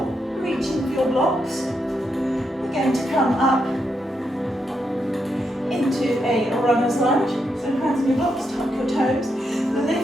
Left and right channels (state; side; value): normal; both; correlation 0.82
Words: reaching for your blocks. Going to come up into a runner's lunge. So hands on your blocks, tuck your toes,